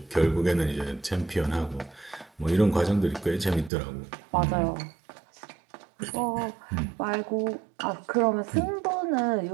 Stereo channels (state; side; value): drops out; left; at 3.7 s